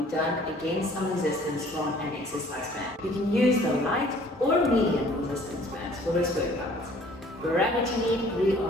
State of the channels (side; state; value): both; normal; correlation 0.55